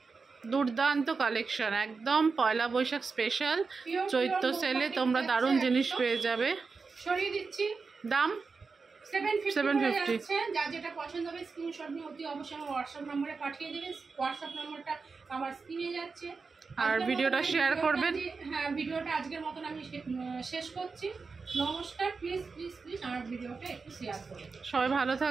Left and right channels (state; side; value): quieter; left; 4.6 dB